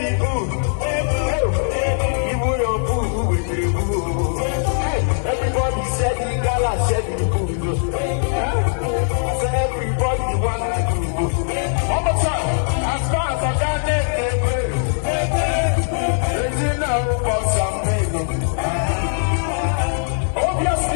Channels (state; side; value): silent; right; digital silence